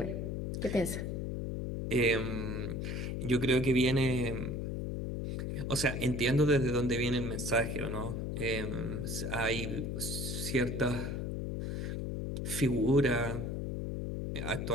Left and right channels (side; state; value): left; noise; hum, 2 dB below the sound